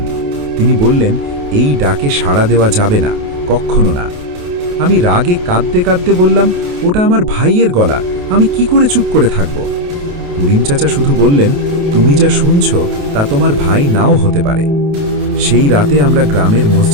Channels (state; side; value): late; left; 28 ms